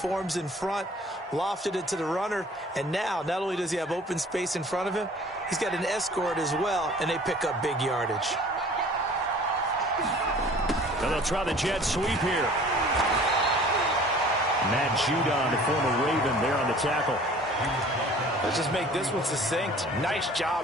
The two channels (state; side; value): normal; both; correlation 0.49